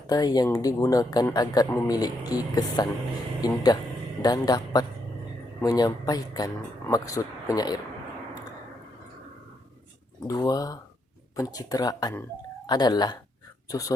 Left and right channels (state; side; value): normal; both; correlation 0.78